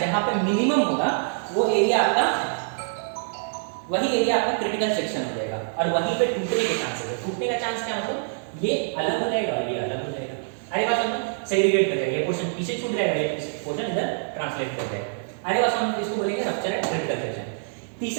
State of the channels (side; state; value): left; silent; digital silence